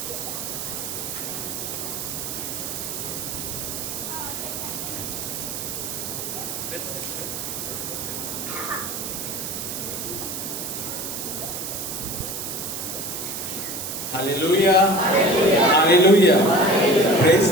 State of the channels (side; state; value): right; noise; hiss, 5 dB below the sound